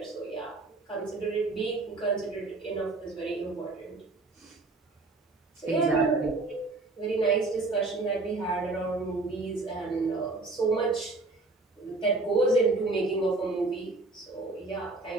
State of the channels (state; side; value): quieter; left; 3.3 dB